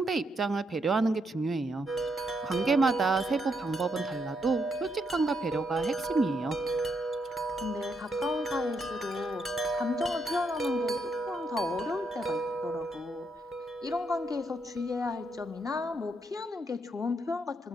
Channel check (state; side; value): normal; both; correlation 0.77